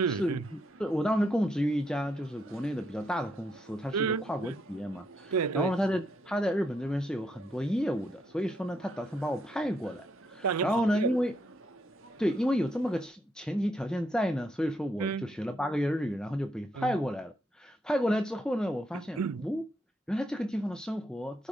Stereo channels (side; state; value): both; normal; correlation 0.77